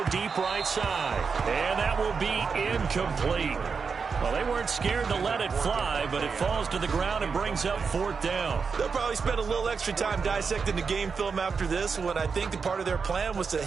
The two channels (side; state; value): left; quieter; 5.4 dB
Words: deep right side. And that will be incomplete. Well, they weren't scared to let it fly, but it falls to the ground and brings up 4th down. They'll probably spend a little extra time dissecting the game film after this one. I think the part of their plan was to